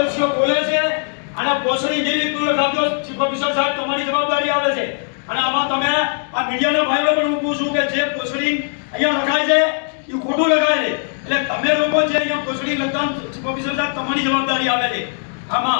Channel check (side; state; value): right; silent; 62 dB below the other